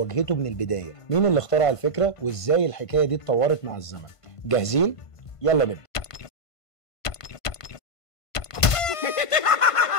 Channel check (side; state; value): right; late; 1.5 ms